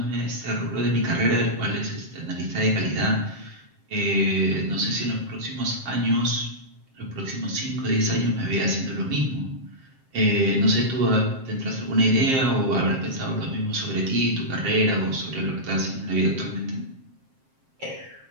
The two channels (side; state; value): left; late; 7.6 ms